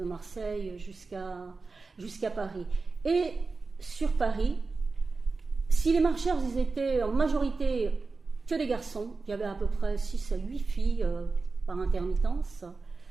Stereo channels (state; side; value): quieter; left; 4.1 dB